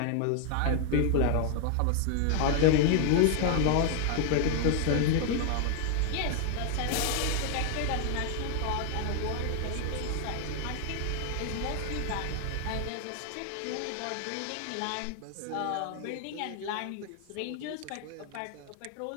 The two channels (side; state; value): both; different; correlation 0.00